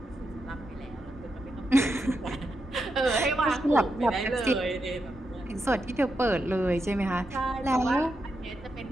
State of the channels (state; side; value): normal; both; correlation 0.85